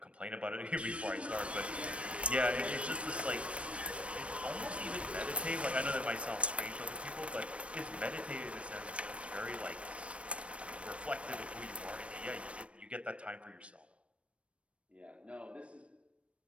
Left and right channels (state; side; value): late; left; 0.061 ms